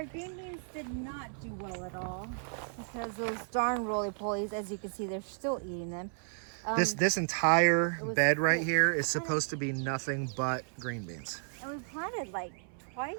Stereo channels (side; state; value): left; silent; 56 dB below the other